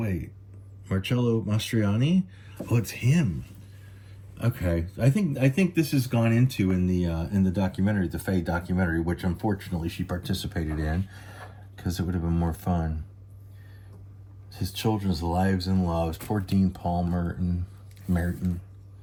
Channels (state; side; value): identical; both; correlation 1.00